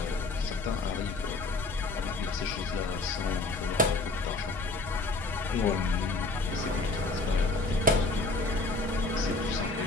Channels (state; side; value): quieter; right; 3.1 dB